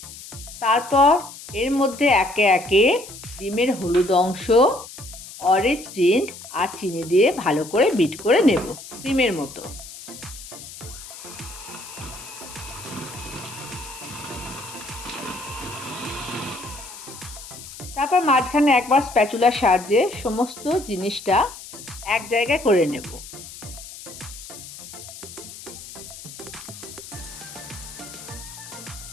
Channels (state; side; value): noise; left; hiss, 14 dB below the sound